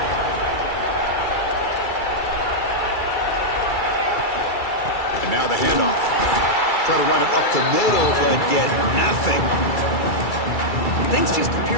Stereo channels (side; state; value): right; late; 2.3 ms